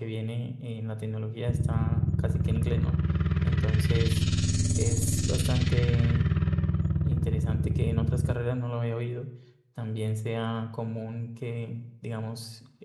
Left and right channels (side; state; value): both; identical; correlation 1.00